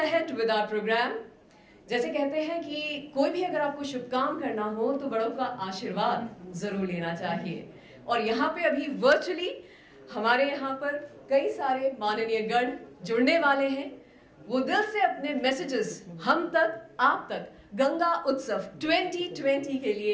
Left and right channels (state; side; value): identical; both; correlation 1.00